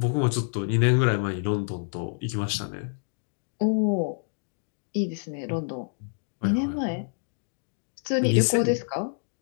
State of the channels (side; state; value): right; silent; digital silence